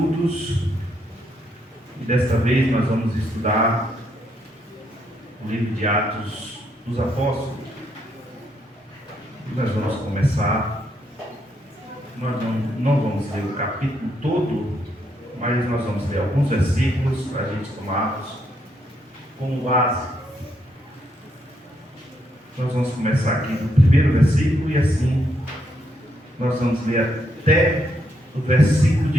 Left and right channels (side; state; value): both; normal; correlation 0.76